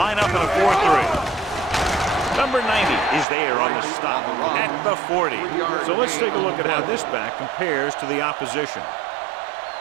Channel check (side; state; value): left; drops out; at 3.2 s